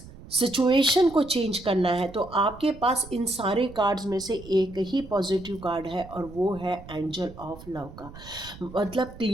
सिचुएशन को चेंज करना है तो आपके पास इन सारे कार्ड्स में से एक ही पॉजिटिव कार्ड है, और वो है एंजल ऑफ लव का। मतलब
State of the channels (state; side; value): noise; right; rumble, 17 dB below the sound